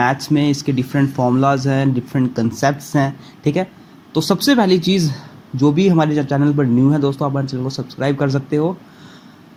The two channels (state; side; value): identical; both; correlation 1.00